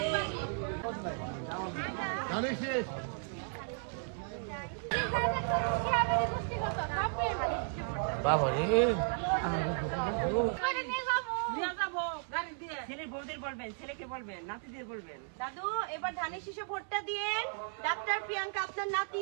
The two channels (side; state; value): left; silent; 55 dB below the other